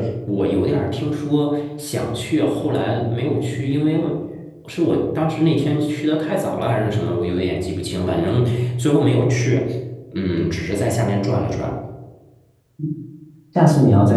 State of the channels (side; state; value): both; identical; correlation 1.00